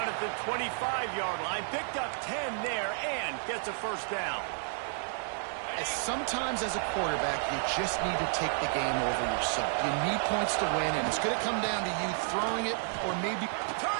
at the 25-yard line. Picked up 10 there and gets a 1st down. Sometimes as a quarterback, you just need to take the game over yourself. You need points to win, and it's going to come down to you throwing it or maybe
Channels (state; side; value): silent; left; 55 dB below the other